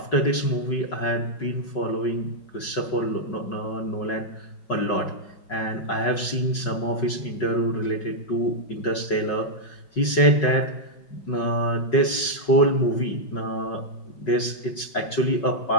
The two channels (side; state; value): right; late; 5.4 ms